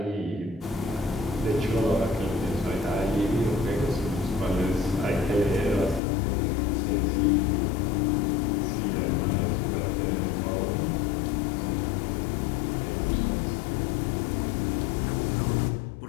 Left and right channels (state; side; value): drops out; right; at 6.0 s